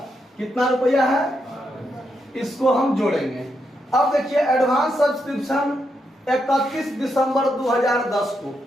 कितना रुपया है? इसको हम जोड़ेंगे। अब देखिए एडवांस सब्सक्रिप्शन 31 दिसंबर 2010 को,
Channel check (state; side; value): normal; both; correlation 0.82